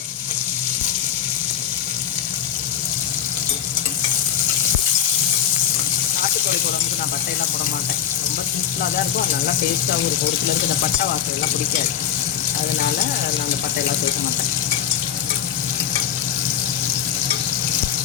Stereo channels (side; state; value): right; quieter; 9.5 dB